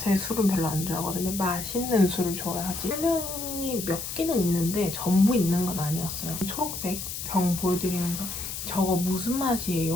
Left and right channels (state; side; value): noise; left; hiss, 6 dB below the sound